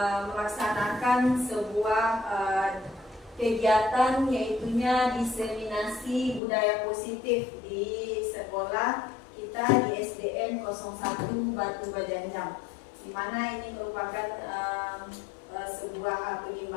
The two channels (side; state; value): right; drops out; at 6.4 s